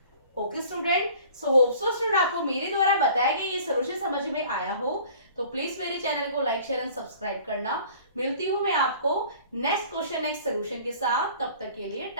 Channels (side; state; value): both; inverted; correlation -0.49